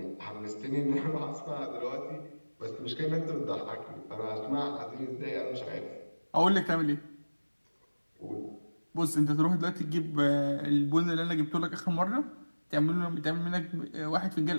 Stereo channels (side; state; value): both; inverted; correlation -1.00